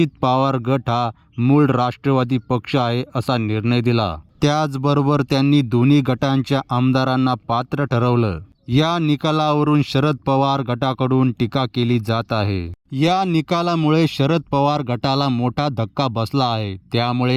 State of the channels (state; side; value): identical; both; correlation 1.00